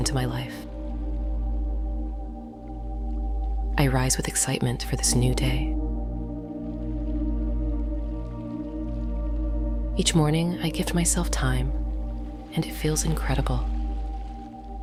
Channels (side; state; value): both; identical; correlation 1.00